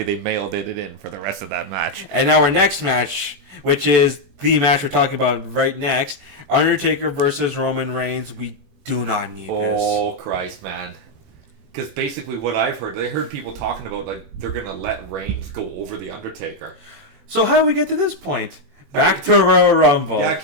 they mailed it in for the rest of that match. And now our next match, which is the match we're talking about right next, Undertaker versus Roman Reigns. We do not need this. Oh Christ, man! Because basically what I've heard, I heard people talking about like they're gonna let Reigns go over the Undertaker. So how do we get to this point? Back to Royal Rumble. Back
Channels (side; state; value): left; late; 21 ms